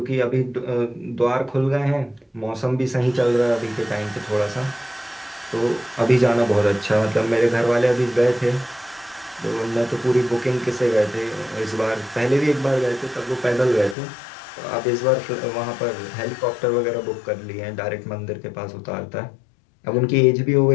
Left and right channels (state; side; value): drops out; right; at 14.0 s